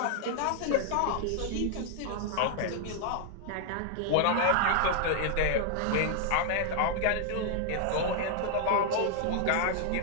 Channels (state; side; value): different; both; correlation 0.00